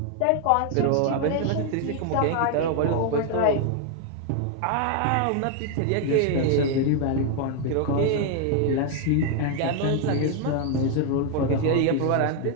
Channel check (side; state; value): both; different; correlation 0.00